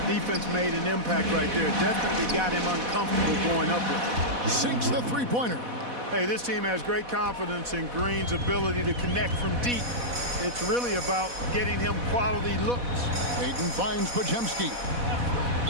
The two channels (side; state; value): left; late; 4.1 ms